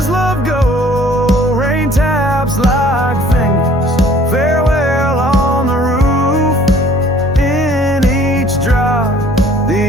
love go? Rain taps like fingers, farewell on the roof. In each drop,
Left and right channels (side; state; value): both; normal; correlation 0.54